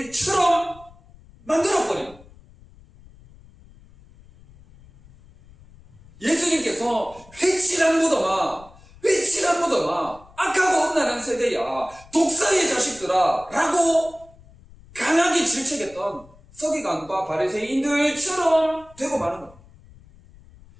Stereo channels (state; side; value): noise; left; rumble, 24 dB below the sound